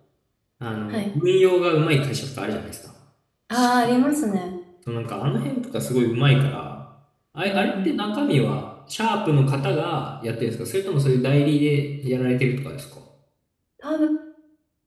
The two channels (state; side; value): identical; both; correlation 1.00